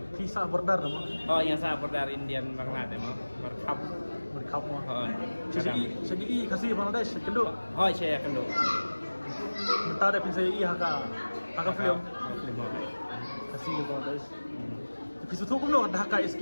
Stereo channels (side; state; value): both; inverted; correlation -1.00